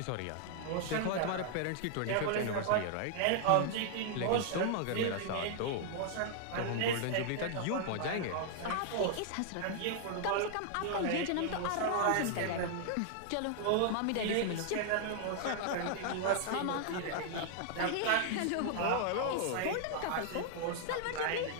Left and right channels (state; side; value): different; both; correlation -0.01